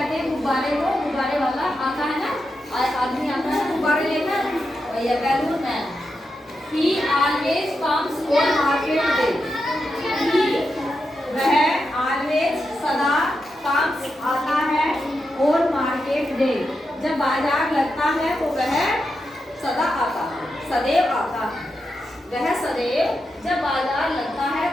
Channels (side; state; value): both; normal; correlation 0.87